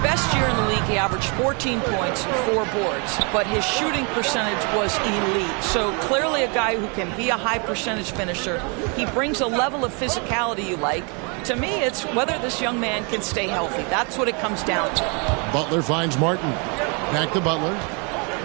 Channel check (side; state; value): left; quieter; 34.2 dB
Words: year in the league, he averaged 14 points and 4 boards, but his shooting percentage was elite. So clearly a guy who can be a high percentage finisher. He brings a level of physicality you like. To me, it's whether this young man can stay healthy. That's what it comes down to. Butler finds Martin. Back to Butler.